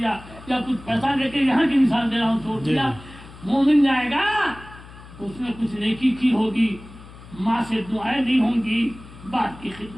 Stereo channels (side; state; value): left; noise; hum, 18 dB below the sound